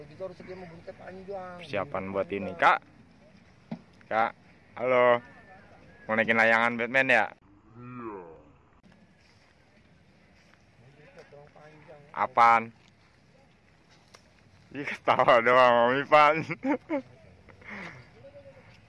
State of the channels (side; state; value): both; identical; correlation 1.00